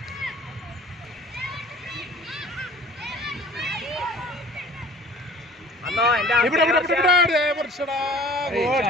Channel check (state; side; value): normal; both; correlation 0.47